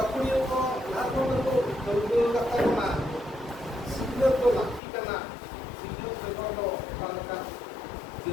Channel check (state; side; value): drops out; right; at 4.8 s